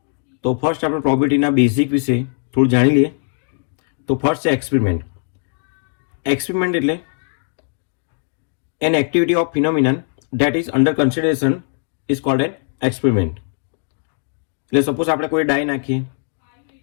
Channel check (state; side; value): silent; right; 59 dB below the other